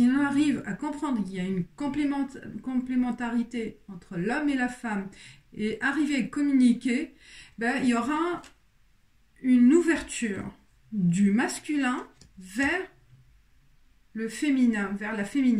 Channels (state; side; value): identical; both; correlation 1.00